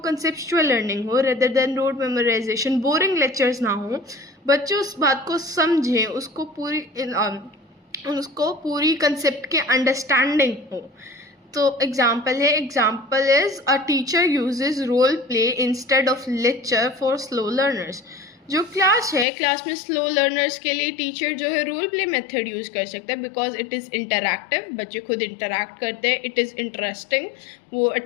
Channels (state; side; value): drops out; right; at 19.2 s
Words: लर्निंग हो rather than road memorisation, boring lectures ना हो, बच्चे उस बात को समझें, उसको पूरी कंसेप्ट के अंडरस्टैंडिंग हो। तो एग्जाम्पल है, example is a teacher uses role play instead of lecture for slow learners. जो क्लास है, क्लास में स्लो लर्नर्स के लिए टीचर जो है रोल प्ले मेथड यूज कर सकता है, बिकॉज इट इज़ इंटरैक्टिव, बच्चे खुद इंटरैक्ट करते हैं, इट इज़ इंटरेस्टिंग, वो